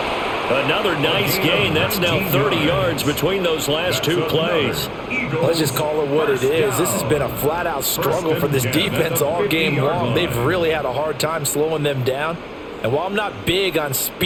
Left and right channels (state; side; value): identical; both; correlation 1.00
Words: Another nice gain. That's now 30 yards between those last two plays. Let's just call it what it is. This has been a flat-out struggle for this defense all game long. They've really had a hard time slowing them down. And while I'm not big on